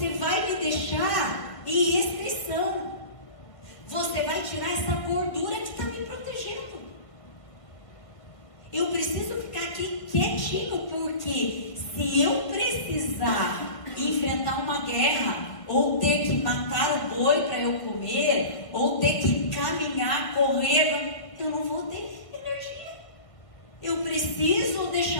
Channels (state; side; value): late; right; 1.6 ms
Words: vai me deixar em restrição. Você vai tirar essa gordura que está me protegendo. Eu preciso ficar aqui quietinho, porque se eu precisar enfrentar uma guerra, ou ter que matar o boi para eu comer, ou ter que caminhar, correr, eu não vou ter energia. Eu preciso